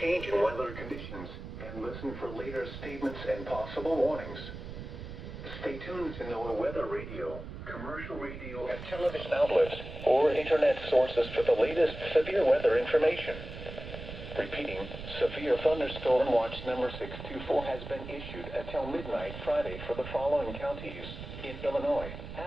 weather conditions and listen for later statements and possible warnings. Stay tuned to know weather radio, commercial radio, and television outlets or internet sources for the latest severe weather information. Repeating, severe thunderstorm watch number 624 has been issued until midnight Friday for the following counties in Illinois:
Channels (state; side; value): noise; right; rumble, 10 dB below the sound